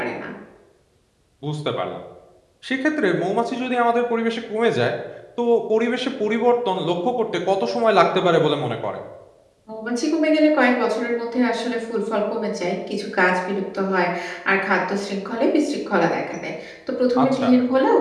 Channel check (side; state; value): both; identical; correlation 1.00